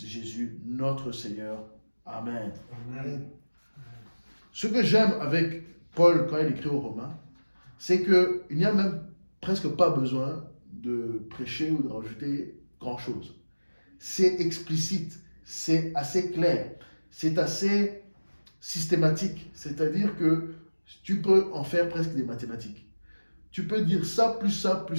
notre Seigneur. Amen. Amen. Ce que j'aime avec Paul quand il écrit aux Romains, c'est qu'il n'y a même presque pas besoin de prêcher ou de rajouter grand-chose. C'est explicite, c'est assez clair, c'est assez systématique. C'est-à-dire que tu peux en faire presque des mathématiques. Tu peux dire ça plus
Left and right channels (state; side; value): inverted; both; correlation -1.00